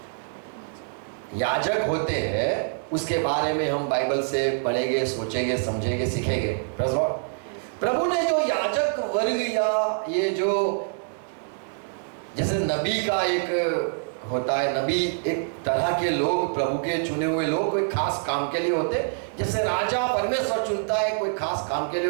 याजक होते हैं उसके बारे में हम बाइबल से पढ़ेंगे, सोचेंगे, समझेंगे, सीखेंगे। Praise Lord. प्रभु ने जो याजक वर्ग या ये जो जैसे नबी का एक होता है, नबी एक तरह के लोग, प्रभु के चुने हुए लोग कोई खास काम के लिए होते। जैसे राजा परमेश्वर चुनता है कोई खास काम के लिए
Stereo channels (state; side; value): silent; left; digital silence